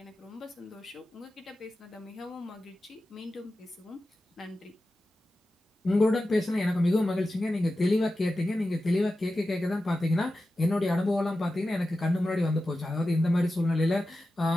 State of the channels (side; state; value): both; normal; correlation 0.93